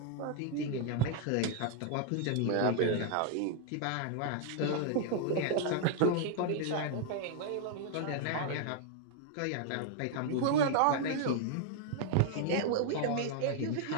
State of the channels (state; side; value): different; both; correlation 0.00